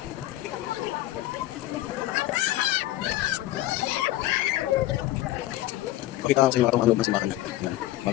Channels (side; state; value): right; quieter; 15.7 dB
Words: Pakita ko sa inyo ang loob ng simbahan. Ayan.